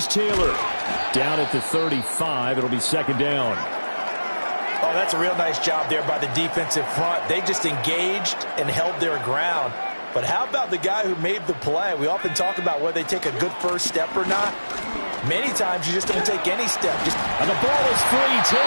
Taylor. Down at the 35, it'll be second down. Oh, that's a real nice job there by the defensive front. They just engaged and held their ground. But how about the guy who made the play? We often talk about whether they take a good first step or not. Many times you just don't take any step. And the ball is free.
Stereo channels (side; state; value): both; inverted; correlation -1.00